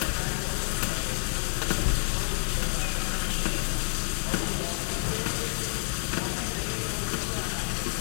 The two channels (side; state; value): right; silent; 59 dB below the other